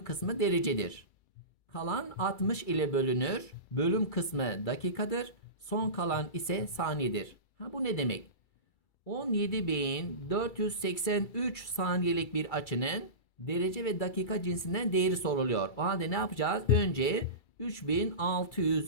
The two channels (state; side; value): late; right; 2.3 ms